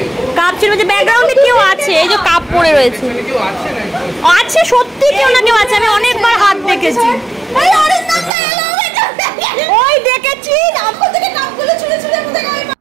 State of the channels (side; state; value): left; drops out; at 8.3 s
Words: কাপ ছিল যে ব্যাকগ্রাউন্ডে কেউ আছে, এই যে কাপ পড়ে রয়েছে, আছে সত্যি কেউ না কেউ আছে, আমি অনেকবার হাত দেখেছি। ওই দেখেছি